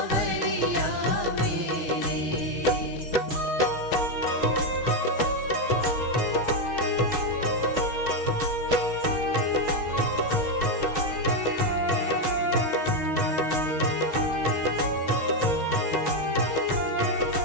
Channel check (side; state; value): left; late; 6.3 ms